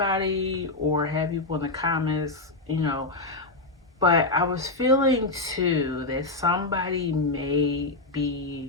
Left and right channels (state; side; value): quieter; right; 3.1 dB